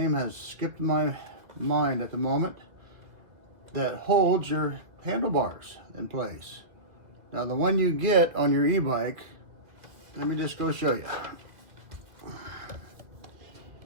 has skipped my mind at the moment, that holds your handlebars in place. Now the one you get on your e-bike, let me just go show you.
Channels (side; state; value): left; late; 1.8 ms